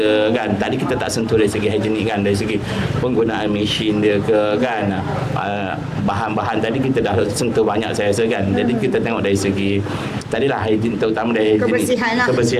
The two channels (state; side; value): identical; both; correlation 1.00